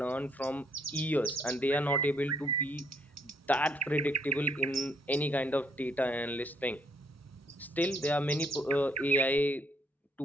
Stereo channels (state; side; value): normal; both; correlation 0.70